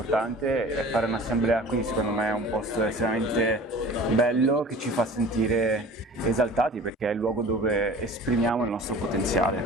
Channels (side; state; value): both; normal; correlation 0.43